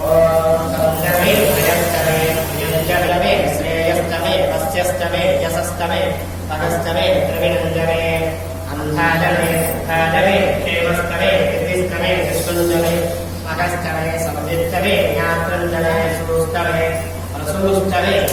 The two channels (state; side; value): identical; both; correlation 1.00